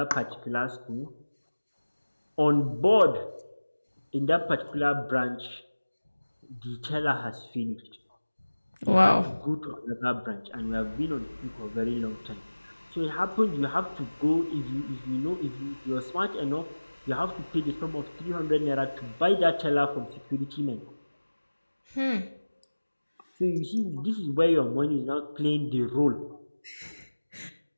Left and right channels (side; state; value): both; inverted; correlation -1.00